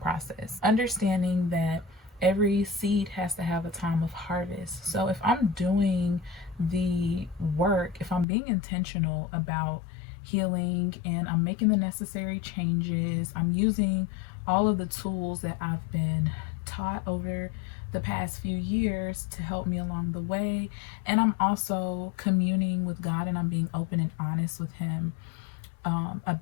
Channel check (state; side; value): drops out; right; at 8.2 s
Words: Understanding that every seed has to have a time of harvest. So if I'm doing the work, if I'm being intentional about healing and I'm making the necessary changes, I'm using all of the tools that I've been taught over the past few years to help me along the way, and I'm also communing with God, and I'm being open and honest with him